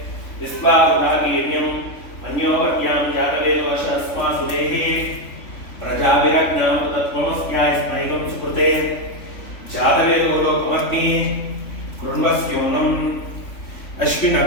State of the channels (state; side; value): late; right; 3.5 ms